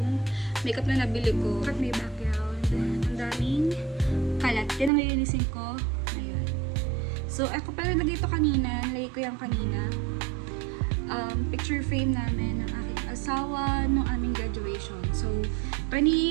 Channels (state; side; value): drops out; left; at 4.9 s